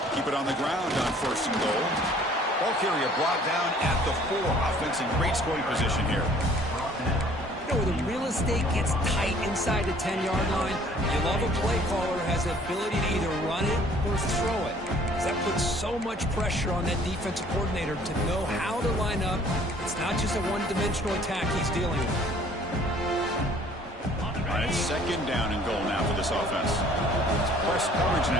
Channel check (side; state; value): both; normal; correlation 0.56